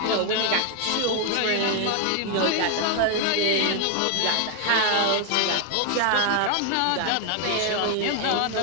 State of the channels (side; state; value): both; different; correlation 0.00